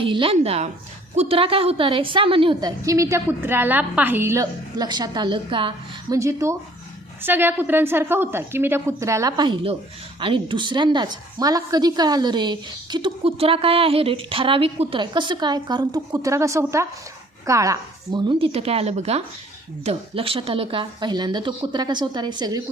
कुत्रा काय होता रे, सामान्य होता की मी त्या कुत्र्याला पाहिलं, लक्षात आलं का? म्हणजे तो सगळ्या कुत्र्यांसारखा होता की मी त्या कुत्र्याला पाहिलं. आणि दुसऱ्यांदाच मला कधी कळालं रे की तो कुत्रा काय आहे रे, ठराविक कुत्रा आहे. कसं काय? कारण तो कुत्रा कसा होता, काळा, म्हणून तिथं काय आलं बघा, लक्षात आलं का? पहिल्यांदा तो कुत्रा कसा होता रे, सगळे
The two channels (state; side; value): normal; both; correlation 0.56